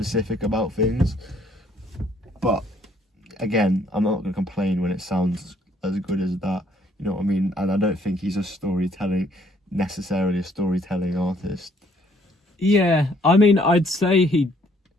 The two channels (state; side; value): normal; both; correlation 0.64